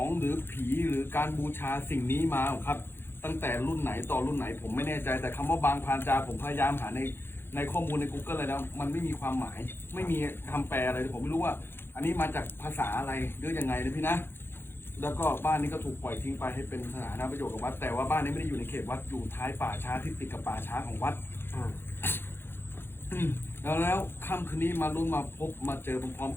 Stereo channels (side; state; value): right; late; 0.11 ms